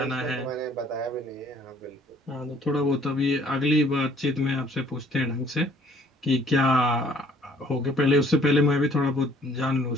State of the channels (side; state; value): both; normal; correlation 0.58